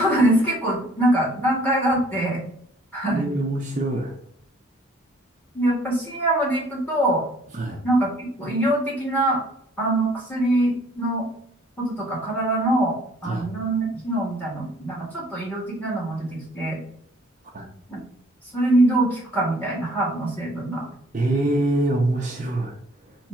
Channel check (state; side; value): normal; both; correlation 0.58